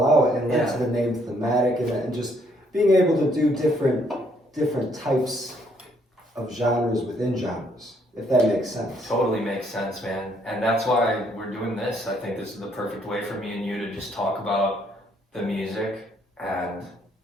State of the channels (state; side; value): normal; both; correlation 0.69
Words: out and led Yeah. to the name Thematic, and just being able to do different types of genres within genres. if that makes sense. Totally makes sense, man. And that's why we're doing this. I think this is the perfect way for me and you to just talk about the music and